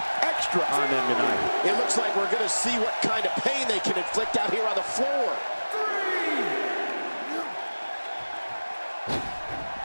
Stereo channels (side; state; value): both; inverted; correlation -1.00